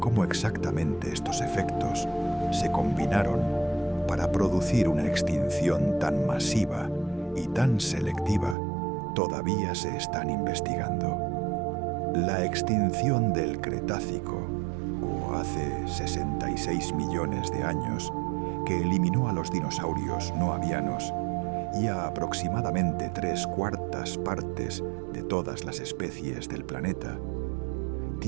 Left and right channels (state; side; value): drops out; left; at 8.6 s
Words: exactamente estos efectos se combinaron para producir una extinción tan masiva y tan selectiva todavía se están investigando. La extinción del Cretácico, o hace 66 millones de años, que eliminó a los dinosaurios no avianos y a aproximadamente 3/4 partes de todas las especies del planeta,